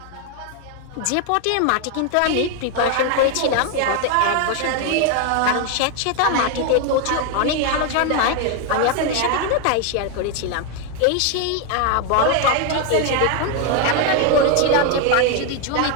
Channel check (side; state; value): both; different; correlation 0.01